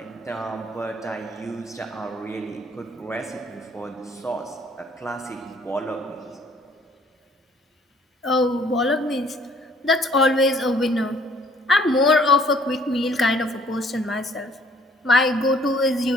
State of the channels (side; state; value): both; normal; correlation 0.60